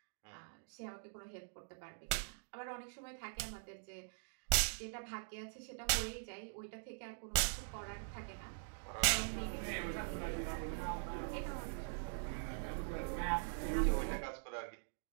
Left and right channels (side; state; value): left; silent; digital silence